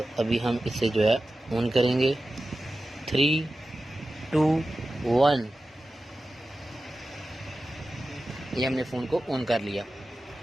अभी हम इसे जो है ऑन करेंगे। 3, 2, 1। ये हमने फ़ोन को ऑन कर लिया।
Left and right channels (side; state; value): both; normal; correlation 0.93